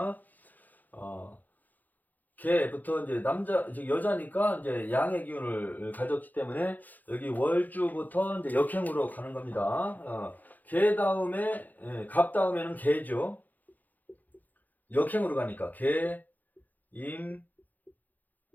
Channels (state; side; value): late; right; 0.083 ms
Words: 개부터 이제 여자니까 이제 양의 기운을 가졌기 때문에 여기 월주부터 이제 역행으로 가는 겁니다. 개 다음에 갑 다음에는 개죠. 역행으로 가니까 개, 임,